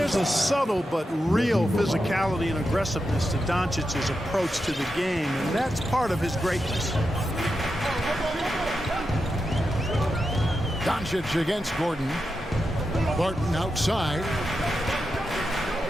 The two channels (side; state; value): both; normal; correlation 0.88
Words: a subtle but real physicality and aggressiveness to Doncic's approach to the game, and that's part of his greatness. Doncic against Gordon. Barton outside.